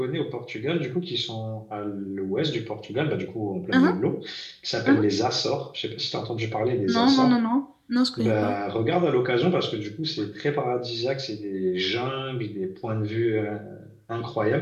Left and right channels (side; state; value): both; identical; correlation 1.00